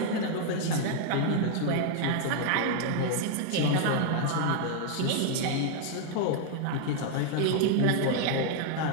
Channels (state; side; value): different; both; correlation 0.00